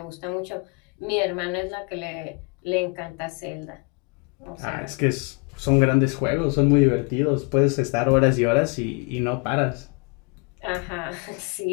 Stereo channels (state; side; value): quieter; right; 29.8 dB